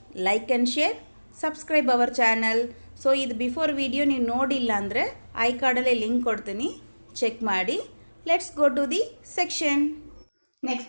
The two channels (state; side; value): inverted; both; correlation -1.00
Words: like and share, subscribe our channel. So ಇದು ಬಿಫೋರ್ ವಿಡಿಯೋ ನೀವು ನೋಡಿಲ್ಲ ಅಂದರೆ ಐ ಕಾರ್ಡಲ್ಲೇ ಲಿಂಕ್ ಕೊಡ್ತೀನಿ, ಚೆಕ್ ಮಾಡಿ. Let's go to the section. Next